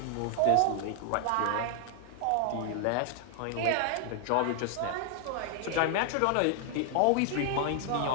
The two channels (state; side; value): different; both; correlation 0.00